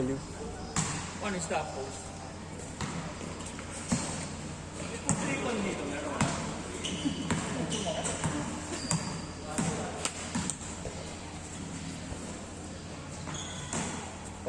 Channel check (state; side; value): identical; both; correlation 1.00